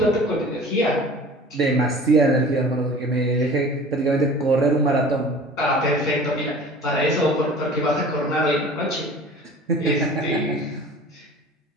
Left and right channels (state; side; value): normal; both; correlation 0.43